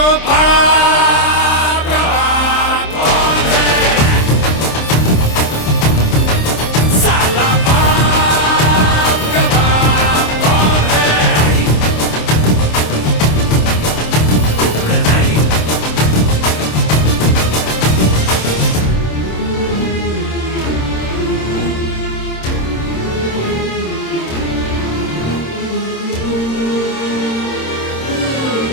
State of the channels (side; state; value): right; late; 26 ms